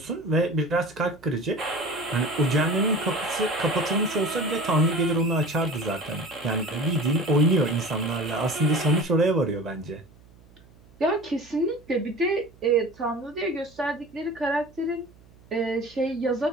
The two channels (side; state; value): right; noise; hum, 26 dB below the sound